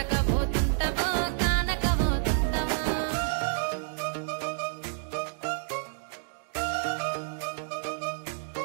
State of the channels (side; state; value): left; silent; digital silence